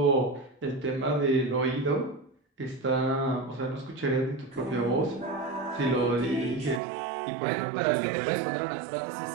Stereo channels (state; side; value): drops out; left; at 6.8 s